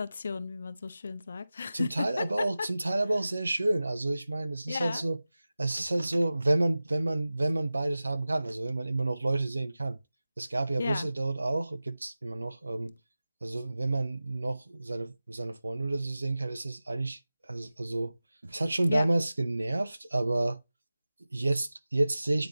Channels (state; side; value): inverted; both; correlation -0.96